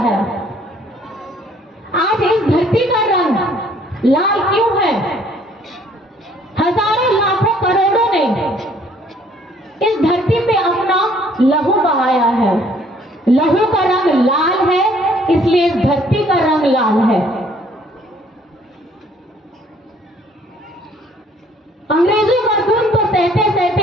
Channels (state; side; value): normal; both; correlation 0.61